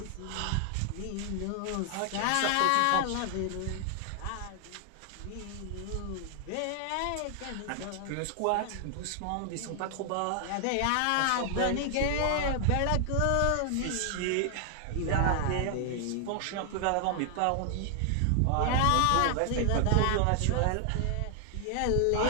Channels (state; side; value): different; both; correlation 0.00